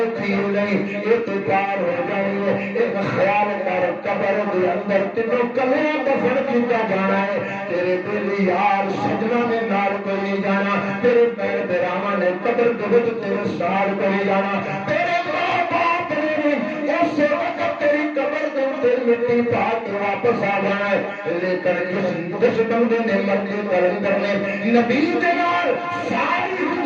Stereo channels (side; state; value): both; identical; correlation 1.00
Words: تھی نہیں اعتبار ہو جائے ایک خیال کر قبر دے اندر تینوں کلے دفن کیتا جانا ہے تیرے دل یار سجنا نے نال کوئی جانا تیرے پیر براواں نے قبر دے وچ تیرے سال کوئی جانا تیرے ماں باپ نے اس وقت تیری قبر دے تے مٹی پا کے واپس آ جانا ہے لیکن جس بندے نے مرنے کلندر نے نبی دے نال ساری